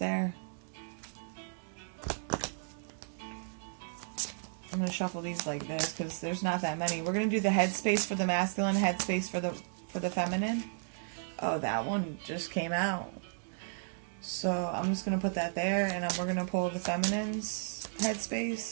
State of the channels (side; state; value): left; silent; digital silence